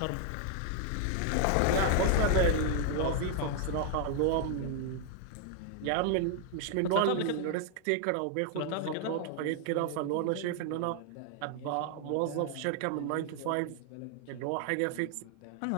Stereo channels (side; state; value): both; different; correlation 0.00